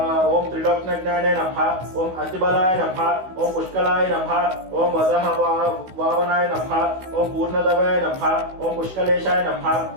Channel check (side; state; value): left; late; 16 ms